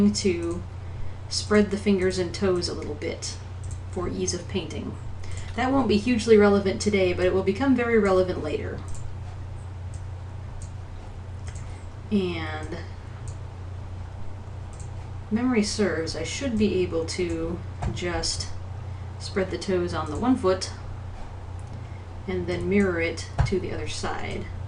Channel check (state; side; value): identical; both; correlation 1.00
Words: to spread the fingers and toes a little bit for ease of painting. That won't be hugely relevant today, but it will become very relevant later. And memory serves, I should be able to just spread the toes on the one foot and then mirror it to the other side.